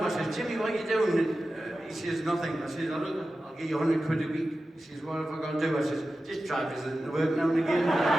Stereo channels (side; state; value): both; normal; correlation 0.93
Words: I said, Jimmy, what are you doing? He says, nothing. I said, I'll give you 100 quid a week. He says, what have I got to do? I said, just try visiting the work now and again.